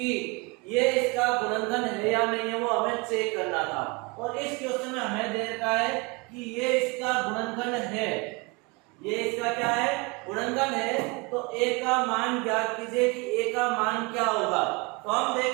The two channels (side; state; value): left; quieter; 28.1 dB